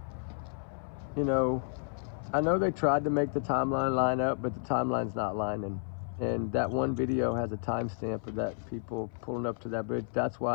I know they tried to make the timeline line up, but the timeline's not lining. And that one video has a timestamp of that people pulling up to that bridge. That's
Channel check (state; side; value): silent; right; 57 dB below the other